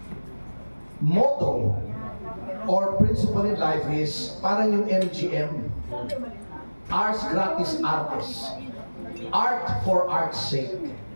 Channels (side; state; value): both; inverted; correlation -1.00